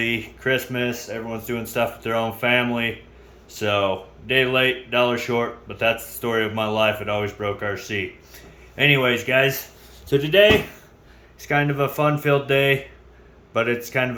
Christmas, everyone's doing stuff with their own family. So, day late, dollar short, but that's the story of my life. It always broke RC. Anyways, guys, so today, it's kind of a fun-filled day, but it's kind of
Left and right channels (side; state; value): both; identical; correlation 1.00